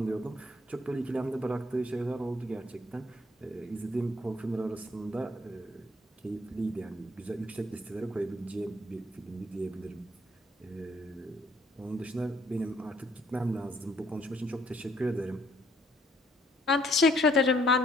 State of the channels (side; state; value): both; normal; correlation 0.66